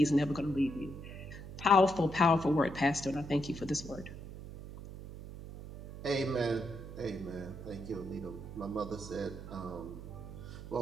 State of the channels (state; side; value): noise; right; hum, 12 dB below the sound